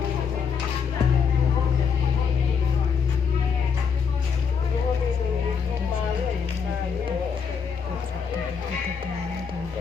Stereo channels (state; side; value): quieter; right; 6.3 dB